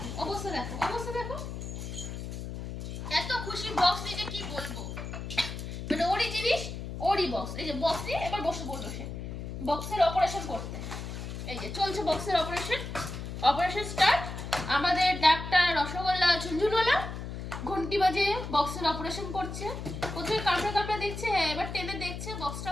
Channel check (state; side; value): noise; left; hum, 7 dB below the sound